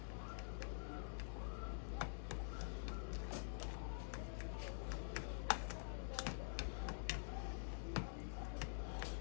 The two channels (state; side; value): silent; right; digital silence